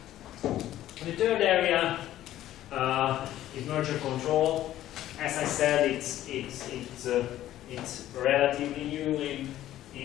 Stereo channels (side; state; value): right; quieter; 13.3 dB